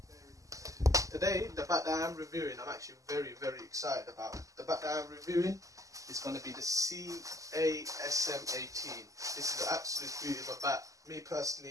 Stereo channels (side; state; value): left; late; 0.16 ms